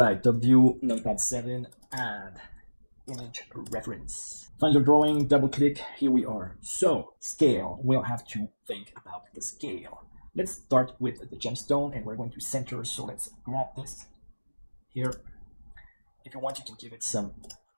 top view, numpad 7, add image reference. Find your drawing, double click, here we are. So, scale, we'll have to think about the scale. Let's start with the gemstone and we're going to center, so let's grab this here. If you want, you can give it some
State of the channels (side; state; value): both; inverted; correlation -1.00